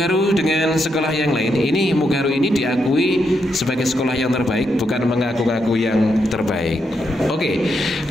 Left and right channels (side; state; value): both; normal; correlation 0.81